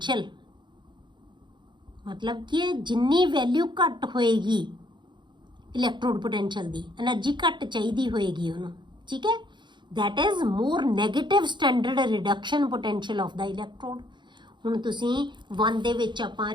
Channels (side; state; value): left; late; 0.22 ms